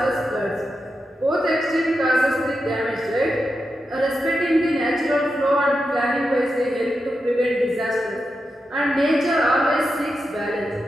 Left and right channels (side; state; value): both; normal; correlation 0.88